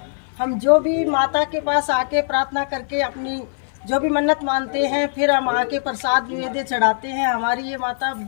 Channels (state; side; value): silent; right; 56 dB below the other